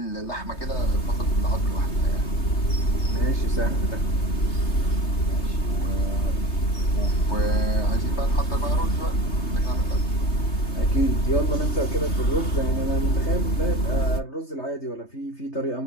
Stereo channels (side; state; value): right; late; 3.3 ms